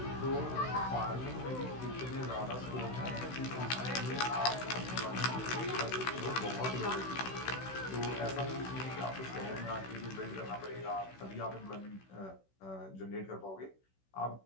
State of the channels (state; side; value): late; right; 16 ms